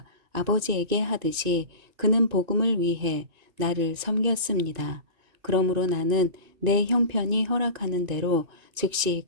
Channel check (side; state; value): left; late; 2.6 ms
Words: 아버지에게 하듯이 그는 복음을 위해 나를 섬겼습니다. 그러므로 나는 내 형편이 허락하는 대로 즉시